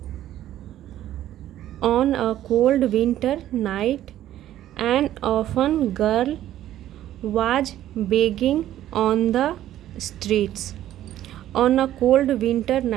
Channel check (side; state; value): left; quieter; 12.7 dB